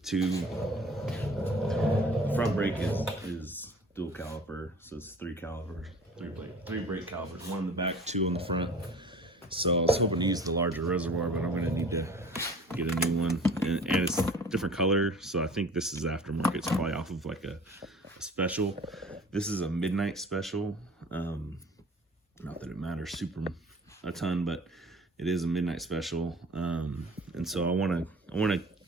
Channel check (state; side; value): normal; both; correlation 0.46